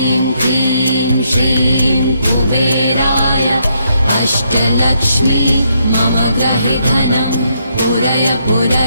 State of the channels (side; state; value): both; inverted; correlation -0.75